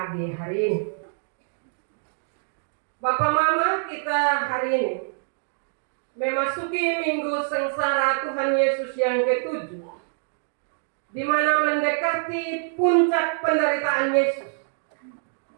hari ini. Bapak Mama, kita hari ini memasuki Minggu Sengsara Tuhan Yesus yang ke-7, di mana mendekati puncak penderitaan Yesus.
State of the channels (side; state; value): left; silent; digital silence